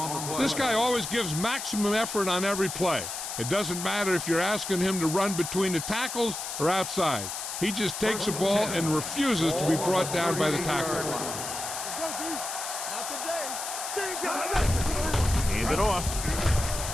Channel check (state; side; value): noise; left; hiss, 6 dB below the sound